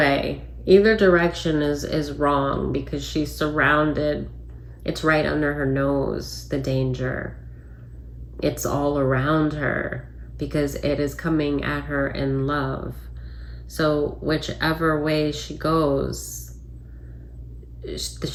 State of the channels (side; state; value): both; identical; correlation 1.00